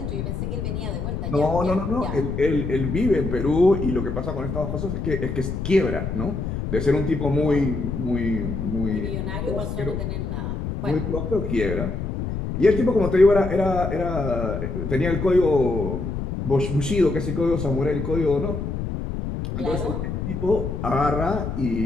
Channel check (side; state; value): left; noise; rumble, 4 dB below the sound